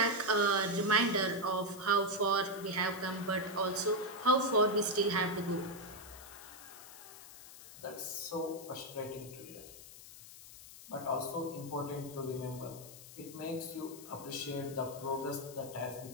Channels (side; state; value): left; noise; hiss, 16 dB below the sound